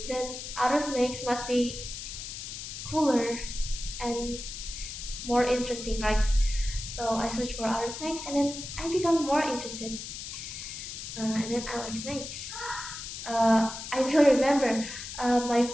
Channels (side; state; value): left; noise; hiss, 8 dB below the sound